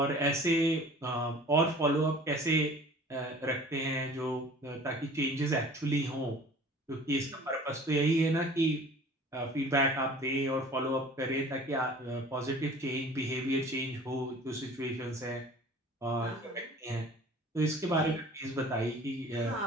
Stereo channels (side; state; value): both; normal; correlation 0.46